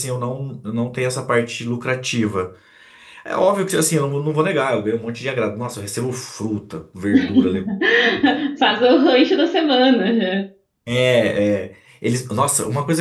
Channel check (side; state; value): both; identical; correlation 1.00